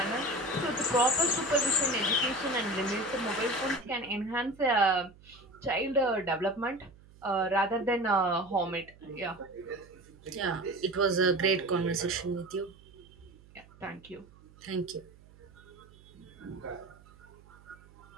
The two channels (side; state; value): right; noise; hum, 24 dB below the sound